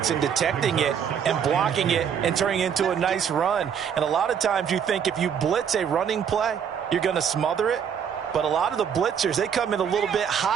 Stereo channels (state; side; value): quieter; left; 7.8 dB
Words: and detecting it and blocking it and turning it into a nice run. And a lot of times you think if you blitz a running play, you're going to smother it. But a lot of the blitzers, they come in a little bit